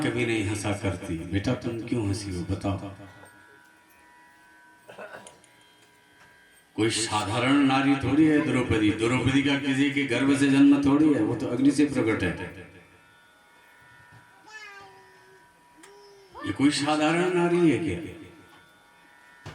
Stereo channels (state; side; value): identical; both; correlation 1.00